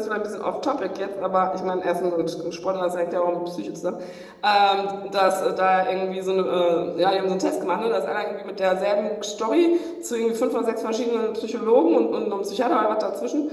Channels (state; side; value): identical; both; correlation 1.00